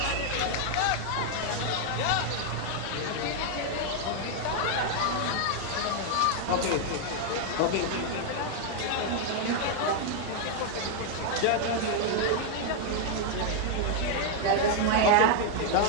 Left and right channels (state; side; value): different; both; correlation 0.00